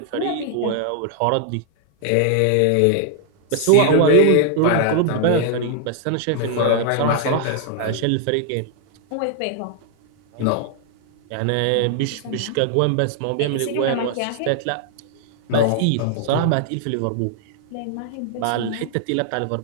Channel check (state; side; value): different; both; correlation 0.00